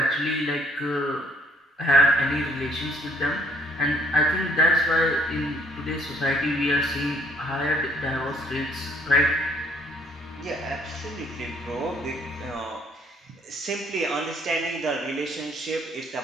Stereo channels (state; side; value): normal; both; correlation 0.62